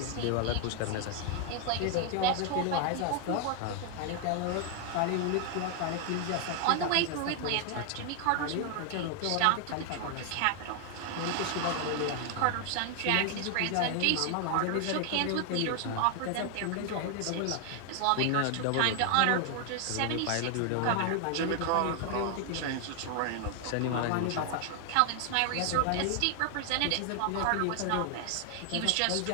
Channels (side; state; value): both; different; correlation 0.00